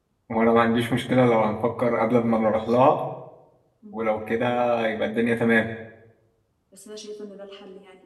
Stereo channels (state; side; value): identical; both; correlation 1.00